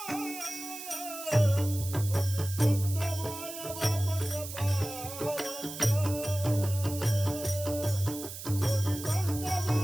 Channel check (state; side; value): noise; right; hiss, 10 dB below the sound